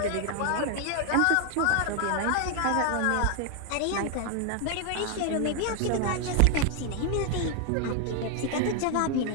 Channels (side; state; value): both; different; correlation 0.00